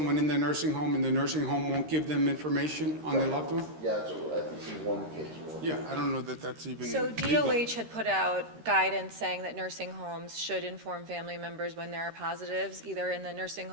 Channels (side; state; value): left; late; 13 ms